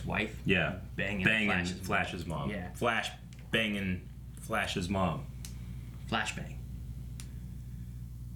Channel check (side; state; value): both; identical; correlation 1.00